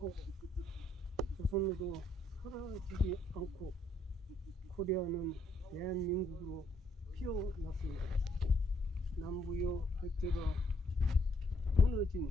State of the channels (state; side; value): normal; both; correlation 0.70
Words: 조선으로 사라지지 않고 코리아는 대한민국으로 피어났습니다. 남부여 백제가 무너진